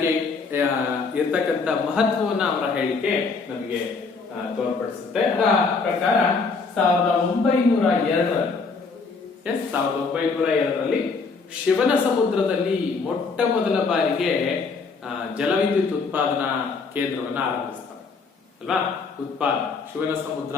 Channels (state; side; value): quieter; right; 4.6 dB